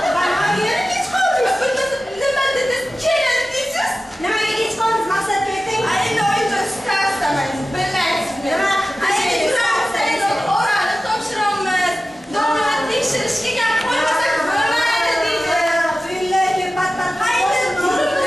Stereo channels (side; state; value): both; normal; correlation 0.95